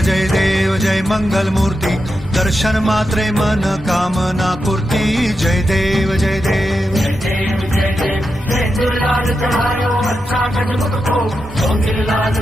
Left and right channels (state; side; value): normal; both; correlation 0.88